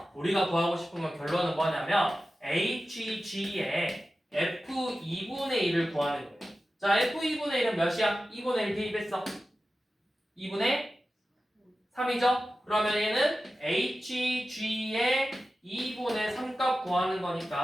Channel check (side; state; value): both; normal; correlation 0.94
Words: 우리가 구하고 싶은 건 결론은 뭐냐면 HG의 F2분의 1을 구하는 거예요. 자, F2분의 1은 몇이야? 2분의 1 대입했어. 2분의 3이죠? 그러면 얘는 HG의 2분의 3값 구하는